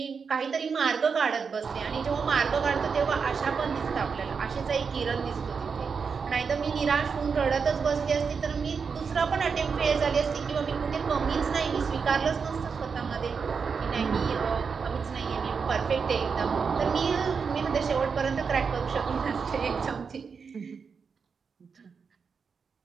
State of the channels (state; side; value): quieter; left; 5.7 dB